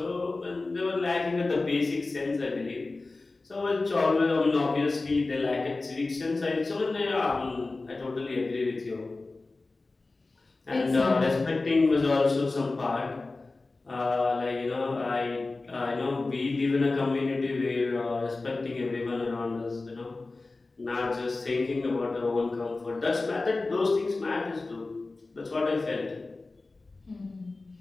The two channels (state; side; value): quieter; right; 3.4 dB